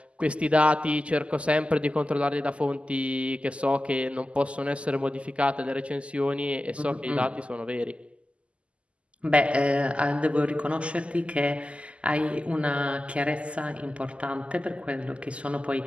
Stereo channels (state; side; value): late; left; 0.057 ms